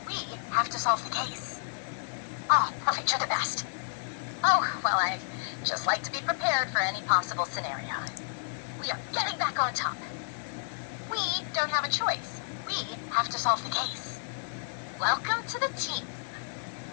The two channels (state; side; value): silent; right; digital silence